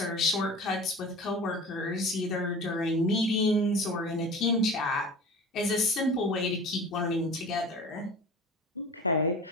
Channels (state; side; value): normal; both; correlation 0.38